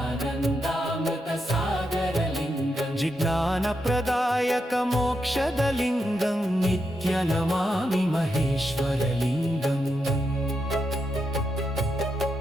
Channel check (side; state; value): both; normal; correlation 0.84